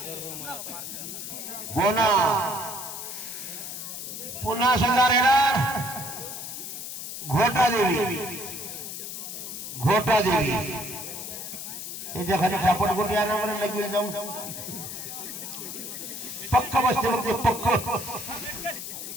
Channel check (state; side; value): noise; left; hiss, 7 dB below the sound